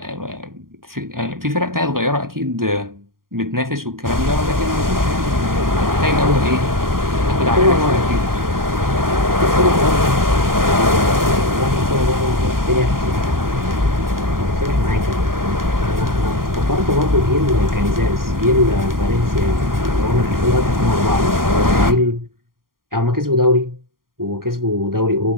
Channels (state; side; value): late; left; 0.91 ms